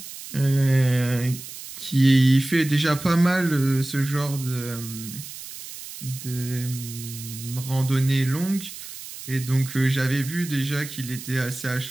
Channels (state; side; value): noise; right; hiss, 12 dB below the sound